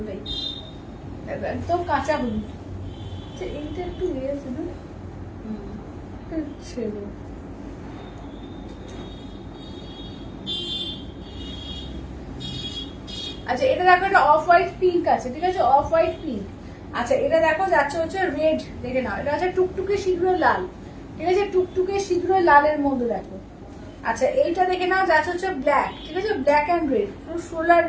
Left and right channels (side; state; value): both; identical; correlation 1.00